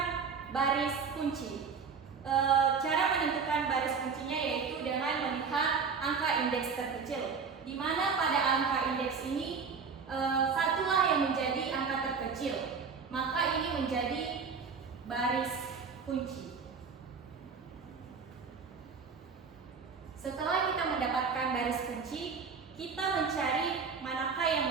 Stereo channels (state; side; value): quieter; left; 5.5 dB